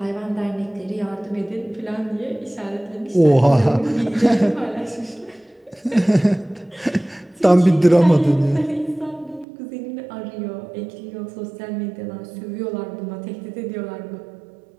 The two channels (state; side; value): drops out; left; at 9.5 s